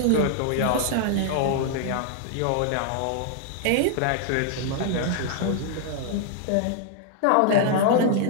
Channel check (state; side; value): different; both; correlation 0.00